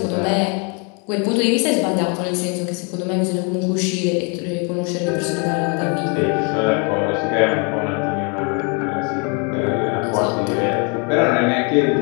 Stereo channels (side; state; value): right; quieter; 35.0 dB